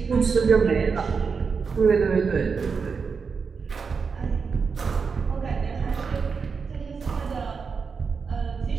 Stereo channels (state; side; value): quieter; left; 5.4 dB